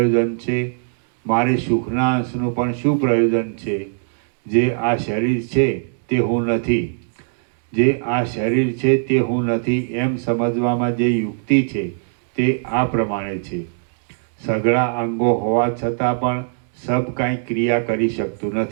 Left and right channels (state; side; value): silent; left; digital silence